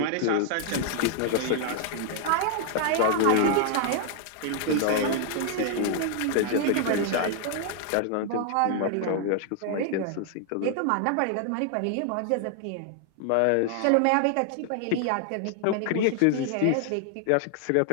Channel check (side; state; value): both; different; correlation 0.00